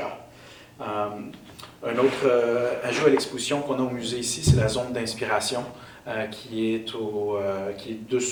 Un autre ajout à l'exposition qu'on a au musée ici, c'est la zone d'inspiration qui est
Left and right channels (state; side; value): identical; both; correlation 1.00